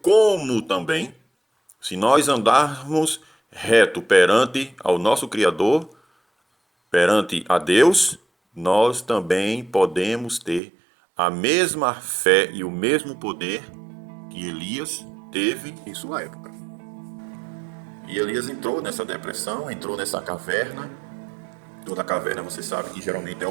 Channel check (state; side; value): drops out; left; at 10.6 s